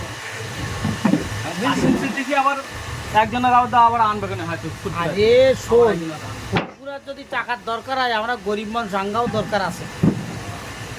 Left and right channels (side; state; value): both; identical; correlation 1.00